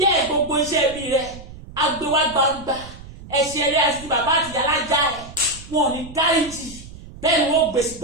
gbogbo iṣẹ́ ibi rẹ̀, agbéwá gbangba, ẹ̀ṣẹ̀ rẹ̀ àti bàbá àti ìyá lájà ẹ̀. Wọn ò ní dáríjì, bẹ́ẹ̀ ni wọ́n gbèsè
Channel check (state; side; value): noise; right; rumble, 16 dB below the sound